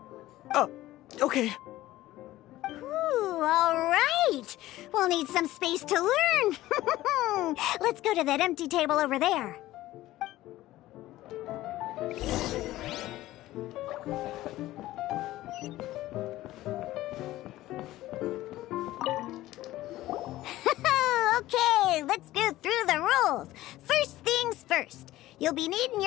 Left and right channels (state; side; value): quieter; right; 16.0 dB